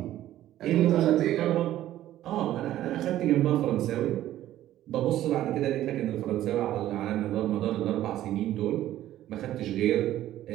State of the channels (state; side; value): quieter; left; 13.4 dB